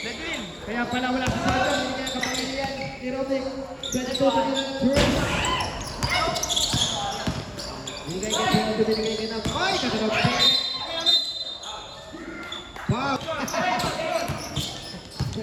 na din. Kaya pala wala sa sarap. Hindi kaya kapangilian ni Rocky. Ganito pa nila ng Durant. Binigay kay Rocky, binigay kay Nam. Ay, kagano'n. Wow.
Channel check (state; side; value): identical; both; correlation 1.00